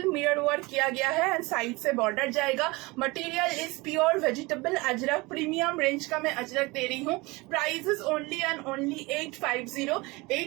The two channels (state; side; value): quieter; left; 23.8 dB